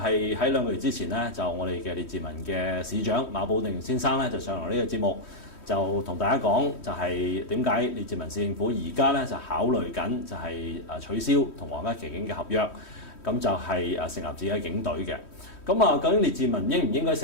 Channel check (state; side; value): late; right; 3.1 ms